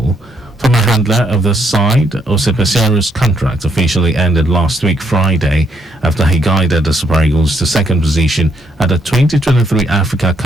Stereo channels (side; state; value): both; normal; correlation 0.73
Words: Former handler of the side, Osipesiaru's contract officially ended last week Friday after he guided the Super Eagles to second position at the 2023 Africa